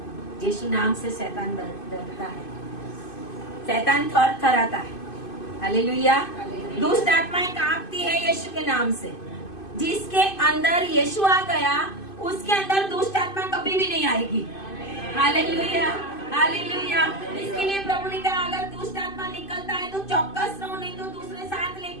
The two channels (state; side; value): late; right; 2.5 ms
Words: यीशु नाम से शैतान डरता है, शैतान थरथराता है, हालेलुया। दुष्ट आत्माएं कांपती है यीशु के नाम से। जिसके अंदर यीशु आ गया उसके अंदर दुष्ट आत्मा कभी भी नहीं आएगी, हालेलुया हालेलुया। इसके लिए प्रभु ने कहा अगर दुष्ट आत्मा निकलता है तो चौकस रहो, नहीं तो दूसरे साथ